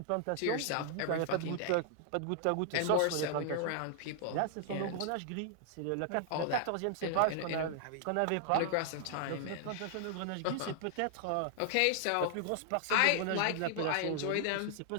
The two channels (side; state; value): both; different; correlation -0.01